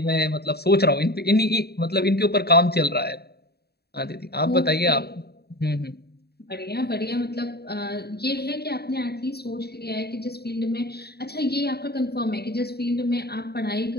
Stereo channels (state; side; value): late; right; 0.47 ms